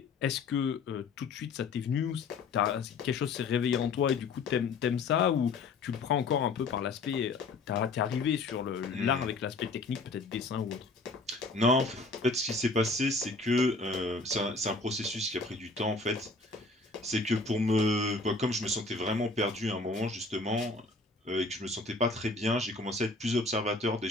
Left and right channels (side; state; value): right; quieter; 3.7 dB